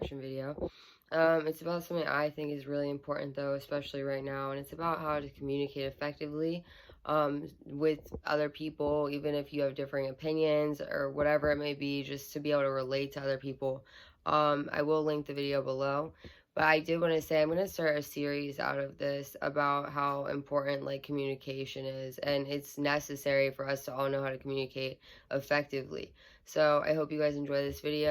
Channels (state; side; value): identical; both; correlation 1.00